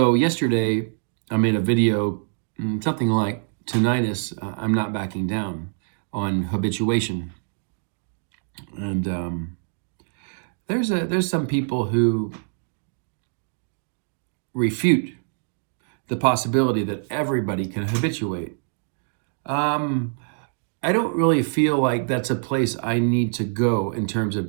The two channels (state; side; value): silent; left; digital silence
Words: yesterday I made a video, something like tinnitus, I'm not backing down, on habituation. And there's some people who refute the possibility that everybody can habituate. Um, I don't really feel like that's a place I need to go in terms of